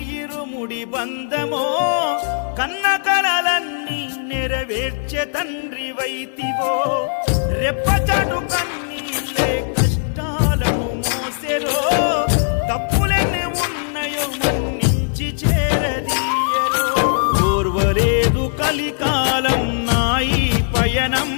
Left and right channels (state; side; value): silent; right; digital silence